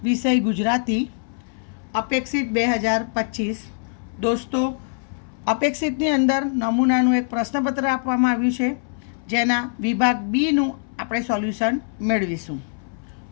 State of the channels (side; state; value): right; silent; 61 dB below the other